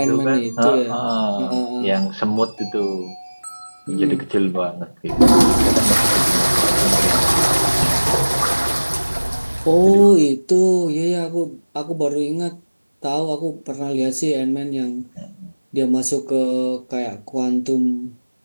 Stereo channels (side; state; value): both; inverted; correlation -1.00